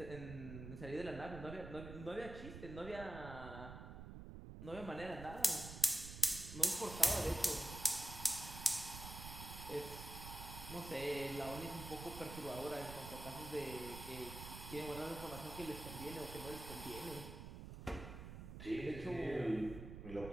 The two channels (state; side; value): noise; right; rumble, 10 dB below the sound